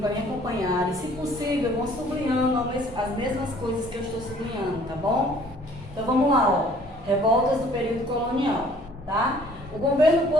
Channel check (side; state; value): both; normal; correlation 0.56